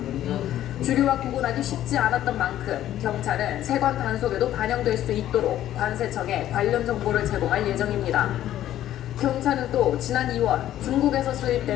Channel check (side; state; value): right; quieter; 12.5 dB